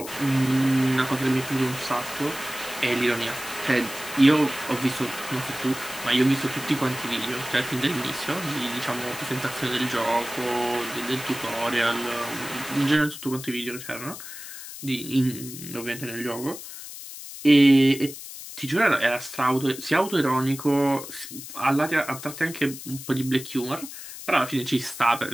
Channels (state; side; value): noise; left; hiss, 12 dB below the sound